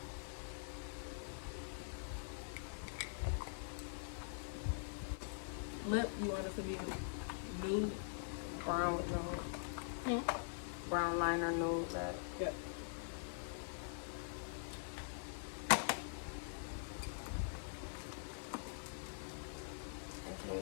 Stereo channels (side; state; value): right; silent; digital silence